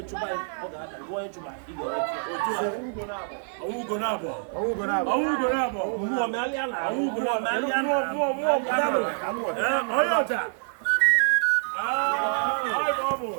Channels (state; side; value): silent; left; digital silence